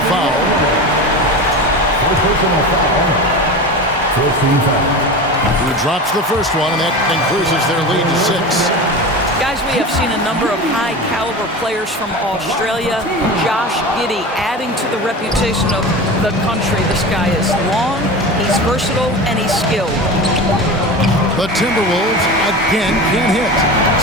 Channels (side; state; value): both; normal; correlation 0.29